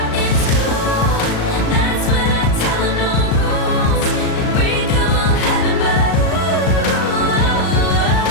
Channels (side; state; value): right; late; 36 ms